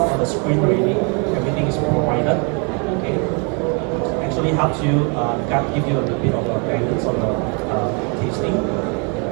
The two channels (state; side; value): quieter; left; 35.0 dB